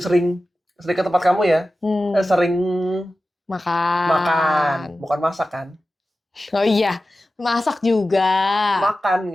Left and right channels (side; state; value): both; normal; correlation 0.94